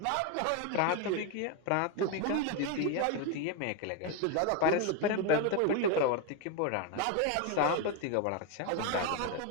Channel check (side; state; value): both; different; correlation 0.02